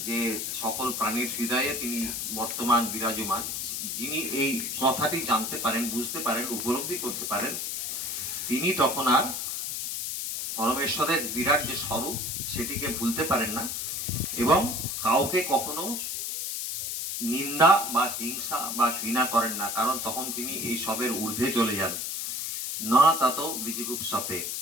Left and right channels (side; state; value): left; noise; hiss, 3 dB below the sound